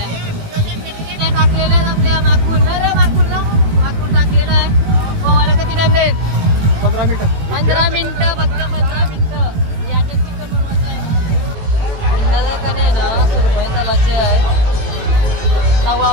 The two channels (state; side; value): late; left; 18 ms